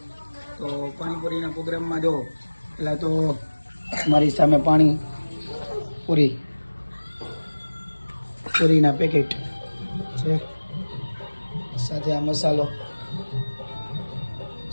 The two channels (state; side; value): inverted; both; correlation -1.00